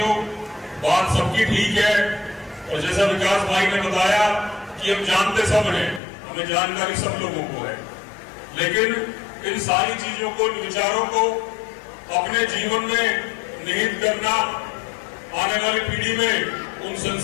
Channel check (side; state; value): right; drops out; at 6.0 s